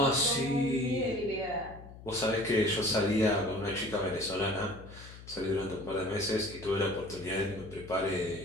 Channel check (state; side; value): noise; left; hum, 16 dB below the sound